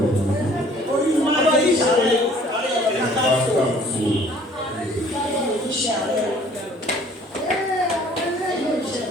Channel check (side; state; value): both; normal; correlation 0.55